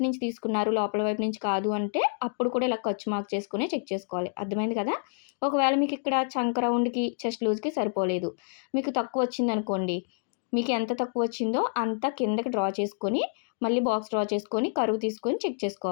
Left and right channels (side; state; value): right; silent; digital silence